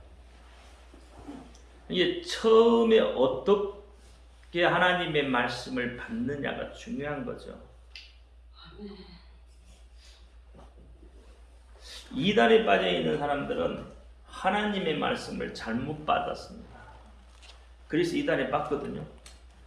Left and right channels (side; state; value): both; identical; correlation 1.00